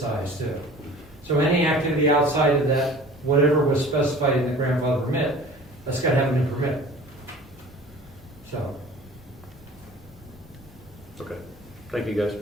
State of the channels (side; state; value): both; normal; correlation 0.44